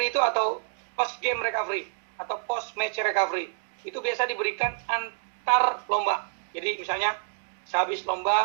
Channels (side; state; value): left; silent; digital silence